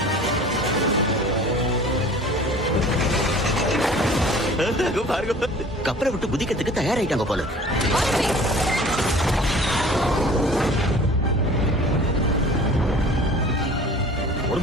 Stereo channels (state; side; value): normal; both; correlation 0.46